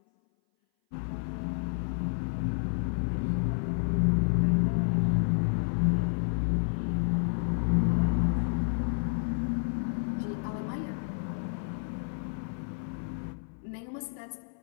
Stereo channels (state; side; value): silent; right; 58 dB below the other